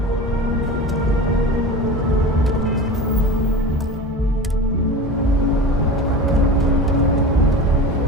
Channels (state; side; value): normal; both; correlation 0.32